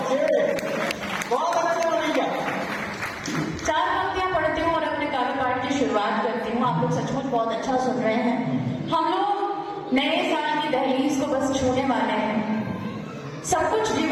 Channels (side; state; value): both; identical; correlation 1.00